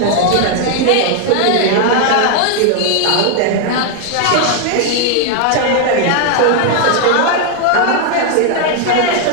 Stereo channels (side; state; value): both; different; correlation 0.00